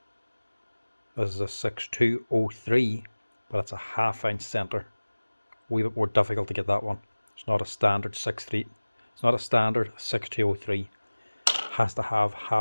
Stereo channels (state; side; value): inverted; both; correlation -1.00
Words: This is a 6203, but it's a 1/2 inch center. A wee bit more difficult to get that one. It's not a standard 63. It's not a standard 6203. Has to have